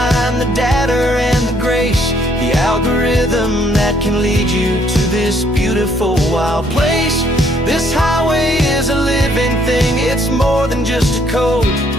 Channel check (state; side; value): normal; both; correlation 0.67